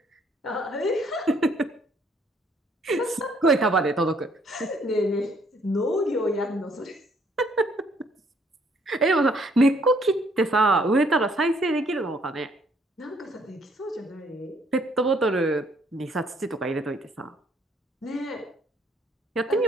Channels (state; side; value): normal; both; correlation 0.65